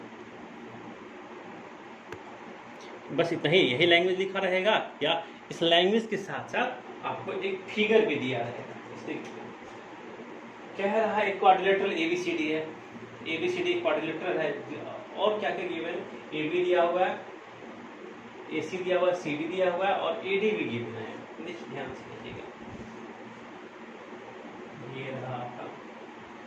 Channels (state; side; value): identical; both; correlation 1.00